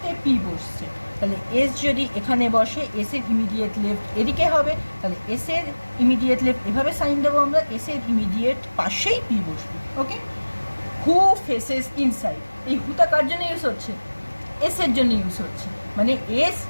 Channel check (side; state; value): both; inverted; correlation -1.00